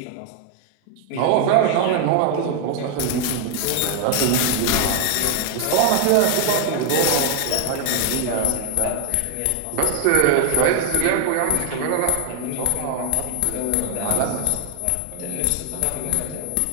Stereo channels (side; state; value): both; different; correlation 0.00